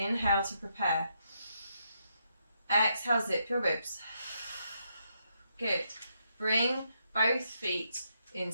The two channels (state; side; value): inverted; both; correlation -0.78